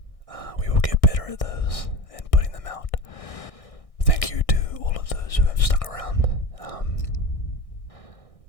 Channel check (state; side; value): late; right; 1.6 ms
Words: we will get better at those and putting them out. Thank you to all of those who have stuck around.